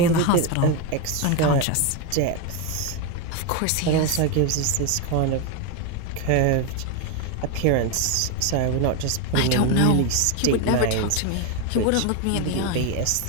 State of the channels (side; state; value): both; different; correlation 0.02